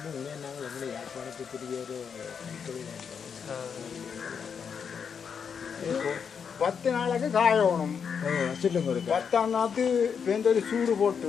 உண்மையாக நாங்கள் எங்களை யாழ்ப்பாணத்துக்குரிய ஒரு 10 நாளைக்கு காயணும். சொல்லுங்க. 10ஆம் நாத்து பேருந்து ஒரு சூடு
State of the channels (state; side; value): quieter; right; 6.7 dB